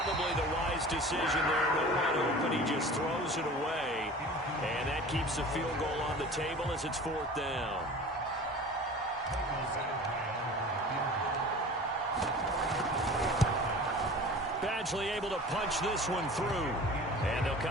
the wise decision there. No one open. He just throws it away. And that keeps the field goal on the table as it's 4th down. Badgley able to punch this one through. And they'll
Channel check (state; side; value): normal; both; correlation 0.40